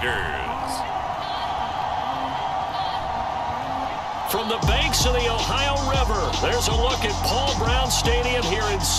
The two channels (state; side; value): identical; both; correlation 1.00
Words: From the banks of the Ohio River, there's a look at Paul Brown Stadium here in